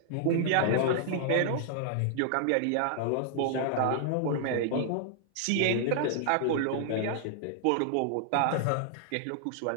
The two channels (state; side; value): different; both; correlation -0.01